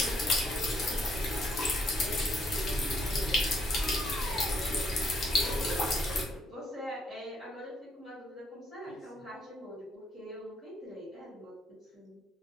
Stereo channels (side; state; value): both; normal; correlation 0.71